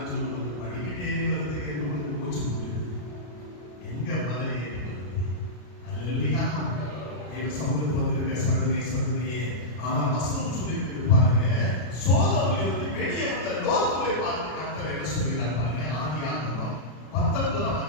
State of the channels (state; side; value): late; right; 33 ms